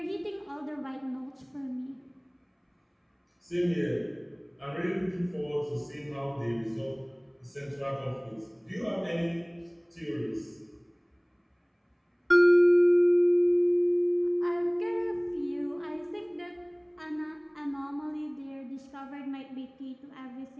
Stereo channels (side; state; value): both; identical; correlation 1.00